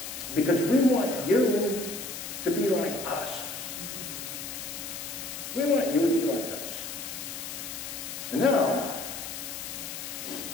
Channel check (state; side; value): noise; left; hiss, 7 dB below the sound